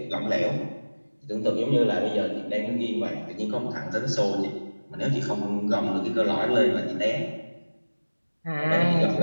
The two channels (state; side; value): inverted; both; correlation -1.00